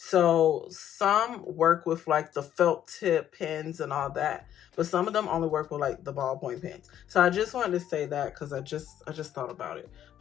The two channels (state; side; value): quieter; right; 10.8 dB